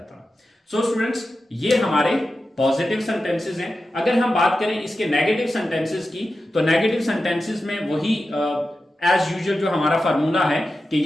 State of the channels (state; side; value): normal; both; correlation 0.92